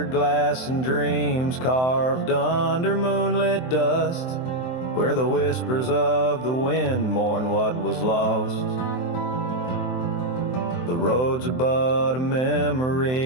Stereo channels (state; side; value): late; right; 23 ms